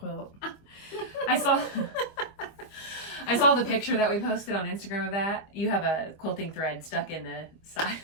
I saw the picture that we posted on Instagram of that. You have a quilting thread stuck in the side.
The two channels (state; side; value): late; right; 26 ms